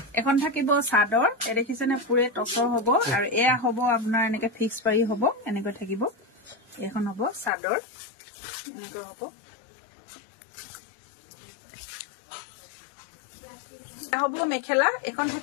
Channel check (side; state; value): right; drops out; at 7.5 s